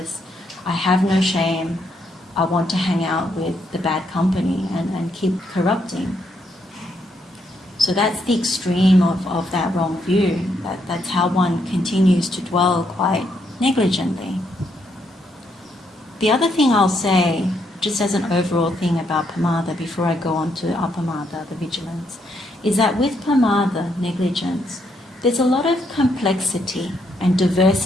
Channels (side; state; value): both; normal; correlation 0.76